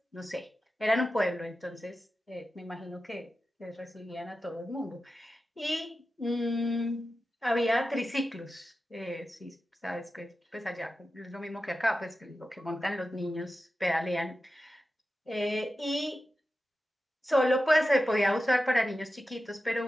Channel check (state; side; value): normal; both; correlation 0.92